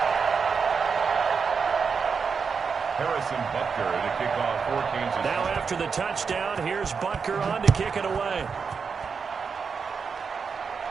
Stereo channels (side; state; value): left; quieter; 5.7 dB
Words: Butker to kick off for Kansas. Now after the touchdown, here's Butker on to kick it away.